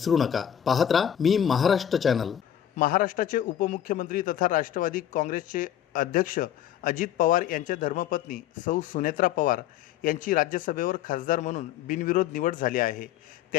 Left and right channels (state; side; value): quieter; right; 10.4 dB